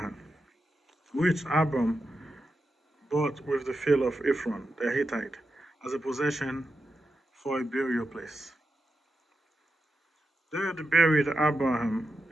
which Abram bought with the field of Ephron the Hittite as a possession for a burial place. There they buried Abraham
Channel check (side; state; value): both; normal; correlation 0.88